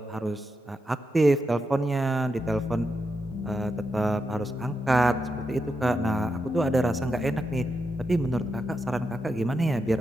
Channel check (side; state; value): both; normal; correlation 0.85